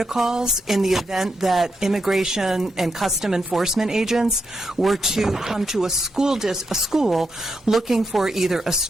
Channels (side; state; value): both; normal; correlation 0.83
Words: in the event that immigration and custom enforcement agents were to come to a school looking for either a